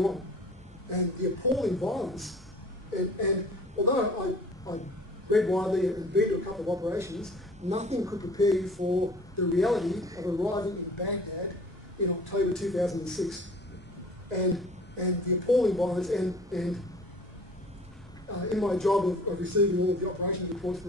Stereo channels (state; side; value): normal; both; correlation 0.48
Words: on. and the appalling violence. And although I read widely and been to a couple of operations, nothing could prepare you for the reality of arriving in Baghdad in October 2006. And the appalling violence, and in my job of receiving all of the operations reports